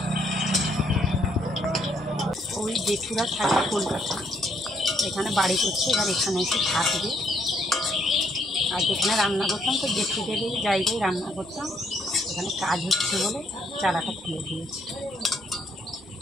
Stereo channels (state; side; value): normal; both; correlation 0.71